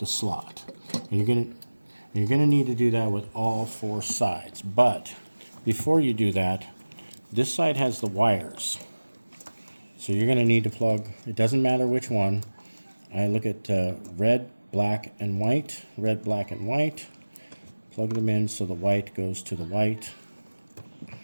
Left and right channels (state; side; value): inverted; both; correlation -1.00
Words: slot. And you're gonna need to do that with all 4 sides. But before you do that, this side has the wires. So you're gonna need to plug, it doesn't matter which one. I look at red, black, and white. Red, black, and white. Plug them in so the white goes to the white